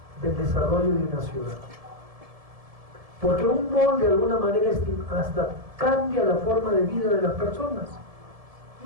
Del desarrollo de una ciudad. Porque un mall de alguna manera hasta cambia la forma de vida de las personas.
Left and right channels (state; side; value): late; left; 1.7 ms